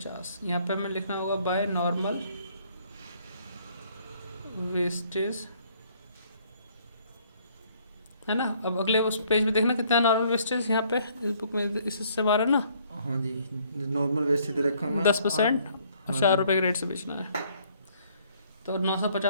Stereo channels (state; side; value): inverted; both; correlation -0.64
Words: यहाँ पे हमें लिखना होगा बाय नॉर्मल वेस्टेज, है ना। अब अगले उस पेज पे देखना कितना नॉर्मल वेस्टेज यहाँ पे इस बुक में, इस हिस्से बारह ना। हाँ जी, नॉर्मल वेस्ट दे रखा है 10% और हाँ 4 जी। रुपये के रेट से बेचना है। तो